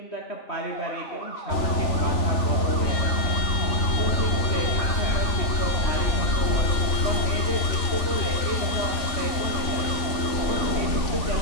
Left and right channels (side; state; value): right; late; 3.4 ms